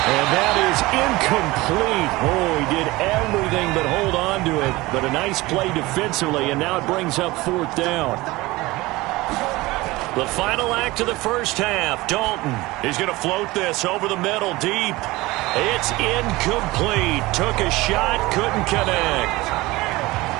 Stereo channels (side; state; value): left; quieter; 20.5 dB